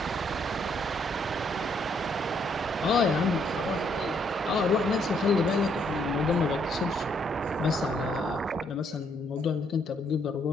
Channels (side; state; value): both; normal; correlation 0.71